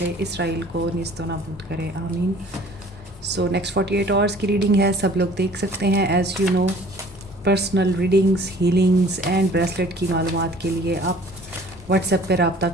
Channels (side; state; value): both; normal; correlation 0.51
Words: इसराइल को निस्तो नाबूद करे, आमीन। सो नेक्स्ट 48 आवर्स की रीडिंग है, सब लोग देख सकते हैं। As you know, personal readings, healings and bracelet की मालूमात के लिए आप व्हाट्सएप पर रब्ता